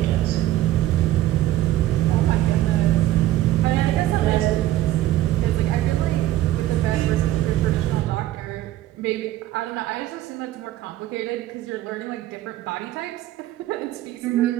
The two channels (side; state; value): left; quieter; 14.5 dB